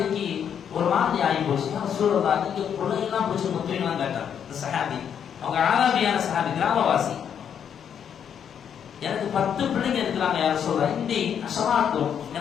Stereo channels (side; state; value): right; quieter; 8.3 dB